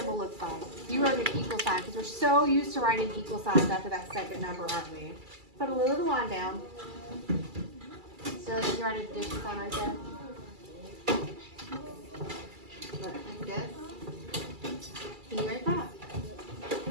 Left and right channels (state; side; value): late; left; 2.3 ms